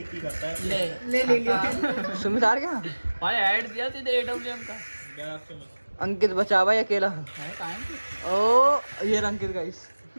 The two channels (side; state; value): both; inverted; correlation -1.00